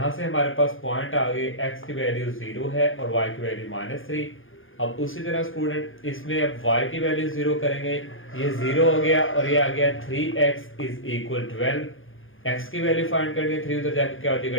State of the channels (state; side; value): late; right; 0.58 ms